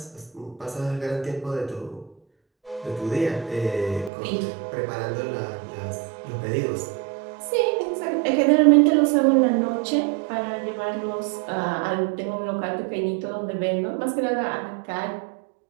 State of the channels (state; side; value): drops out; left; at 4.1 s